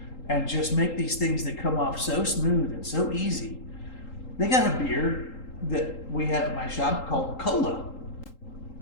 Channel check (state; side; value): late; right; 3.8 ms